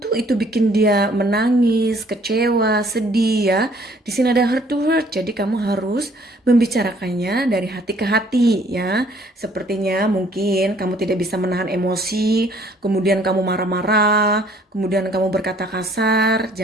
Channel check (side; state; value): both; normal; correlation 0.60